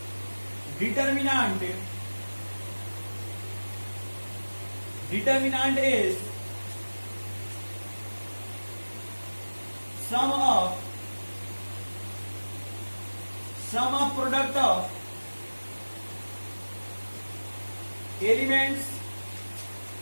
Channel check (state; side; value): inverted; both; correlation -1.00